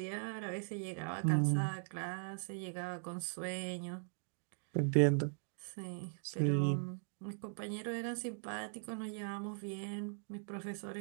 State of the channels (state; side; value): silent; left; digital silence